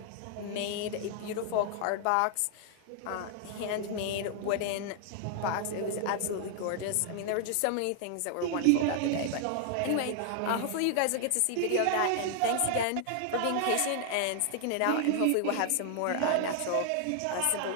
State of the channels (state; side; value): different; both; correlation 0.00